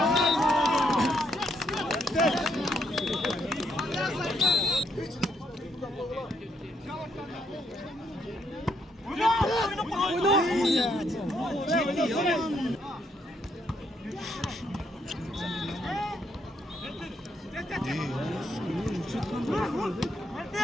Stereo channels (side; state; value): both; normal; correlation 0.74